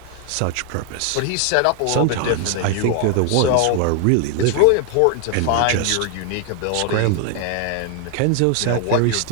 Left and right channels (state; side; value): different; both; correlation 0.00